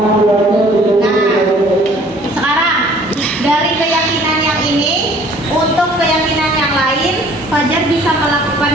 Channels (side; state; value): both; normal; correlation 0.54